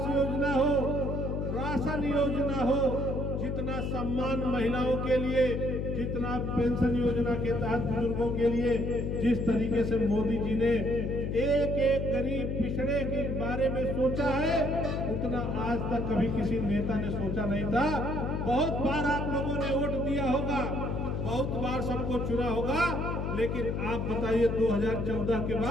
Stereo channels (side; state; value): left; noise; hum, 1 dB below the sound